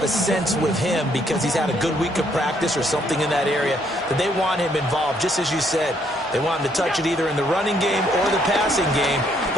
a sense with him because he's had a good week of practice or something in that area that they want him involved. Just as you said, they want him to touch it either in the running game or the passing game,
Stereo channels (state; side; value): normal; both; correlation 0.70